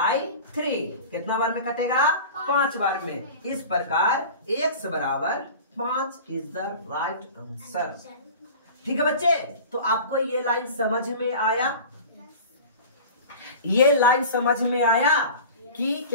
कितना बार में कटेगा? 5 बार में। इस प्रकार x बराबर 5 इज द राइट आंसर। ठीक है बच्चे, तो आपको ये लाइन समझ में आया? ये लाइन समझ में आया कि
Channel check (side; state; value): both; inverted; correlation -0.37